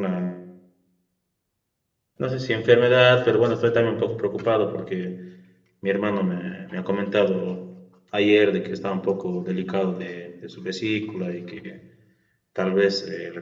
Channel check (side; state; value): both; identical; correlation 1.00